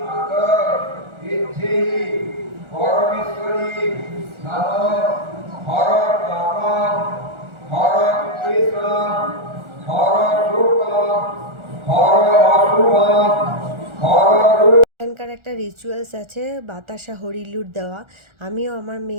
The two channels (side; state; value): left; late; 1.4 ms